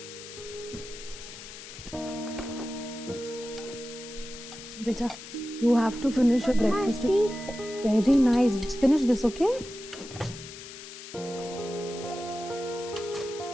बेटा, you have to finish your breakfast. Very nice. Finish this, okay?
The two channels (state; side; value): noise; left; hiss, 13 dB below the sound